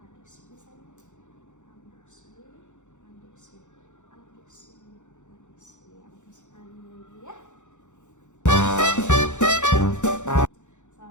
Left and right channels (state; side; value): late; right; 0.84 ms